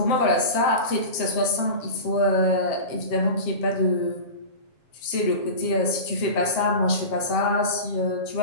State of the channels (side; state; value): right; late; 7.4 ms